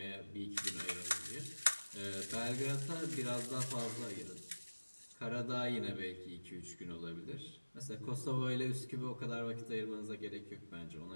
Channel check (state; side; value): inverted; both; correlation -1.00